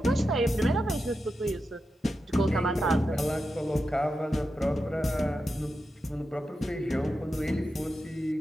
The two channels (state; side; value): normal; both; correlation 0.89